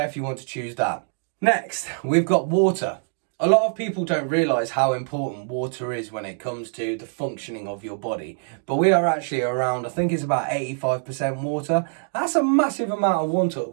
if you want to choose that. Next, we've got water. A lot of people don't realise how important water is when it comes to the functioning of your body. But we are actually around, I think it's about 85% water. That's a massive amount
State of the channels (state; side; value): silent; left; 63 dB below the other